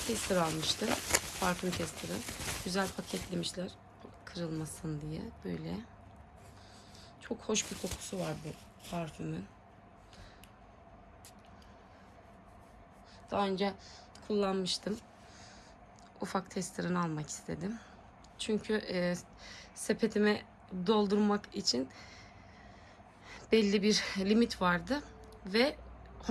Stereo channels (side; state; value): both; identical; correlation 1.00